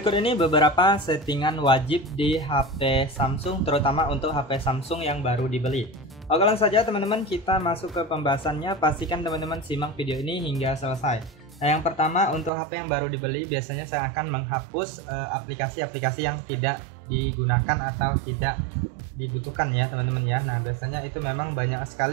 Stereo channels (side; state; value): left; drops out; at 12.5 s